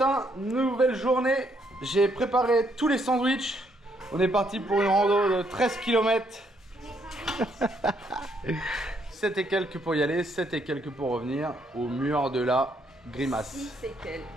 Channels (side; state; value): both; normal; correlation 0.72